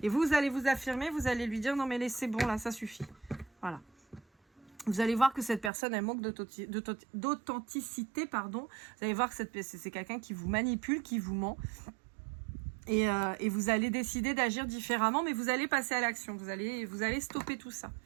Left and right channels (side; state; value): left; drops out; at 5.7 s